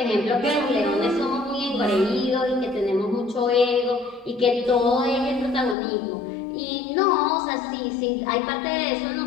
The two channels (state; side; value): drops out; right; at 5.8 s